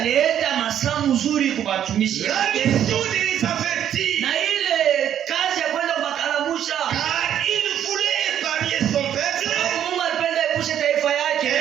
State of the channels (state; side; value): quieter; left; 10.1 dB